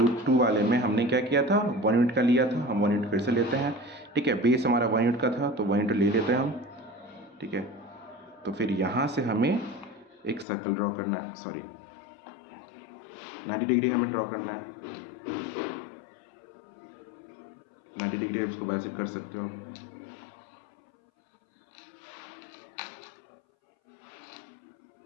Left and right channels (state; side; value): drops out; right; at 10.5 s